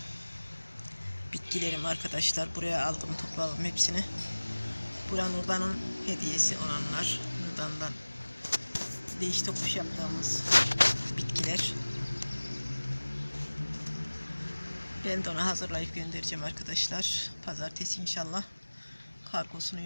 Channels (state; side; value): inverted; both; correlation -1.00